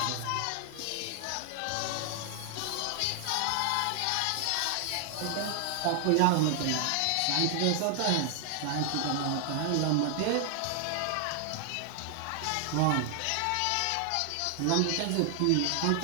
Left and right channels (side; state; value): both; different; correlation 0.00